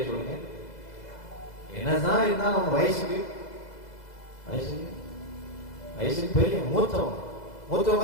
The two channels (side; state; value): right; late; 2.0 ms